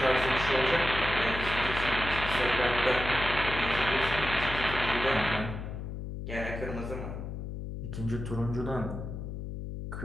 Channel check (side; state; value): left; noise; hum, 7 dB below the sound